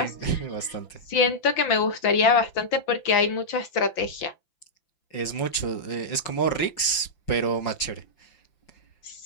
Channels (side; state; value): right; late; 5.9 ms